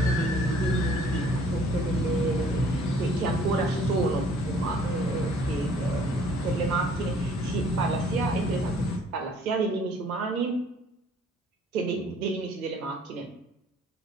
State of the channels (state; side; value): normal; both; correlation 0.57